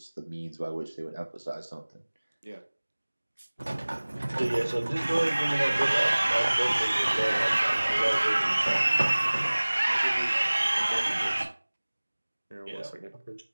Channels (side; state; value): both; inverted; correlation -1.00